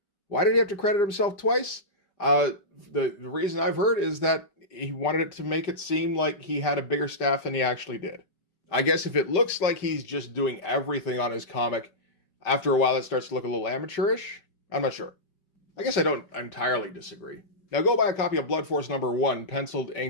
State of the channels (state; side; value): late; right; 5.1 ms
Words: Why did he have to credit himself twice? The reason I've heard is that he wanted it to make it seem like he had a bigger staff than he actually did. I guess if it looks like he's just doing everything on his comic, after a while it starts to look a little amateurish. I'm not sure. I guess I don't entirely disagree. Now go buy a copy of Blood Force number 1, penciled,